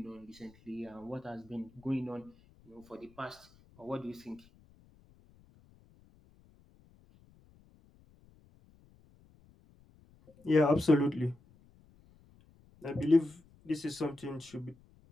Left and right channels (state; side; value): noise; left; rumble, 28 dB below the sound